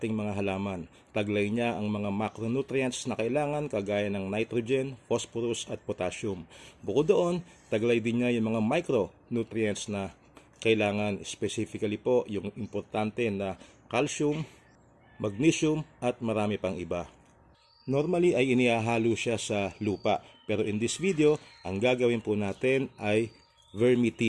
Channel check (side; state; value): both; identical; correlation 1.00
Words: mga halaman. Taglay niya ang mga macronutrients na kailangan kagaya ng nitrogen, phosphorus at potassium. Bukod doon, taglay din niya yung mga micronutrients na kailangan, specifically po yung importante na calcium, magnesium at marami pang iba. Normally ay inihahalo siya sa lupa, pero in this video, ang gagawin po natin ay